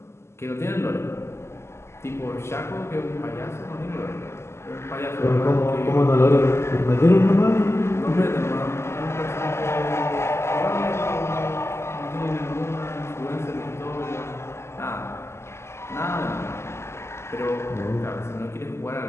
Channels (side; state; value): right; late; 0.13 ms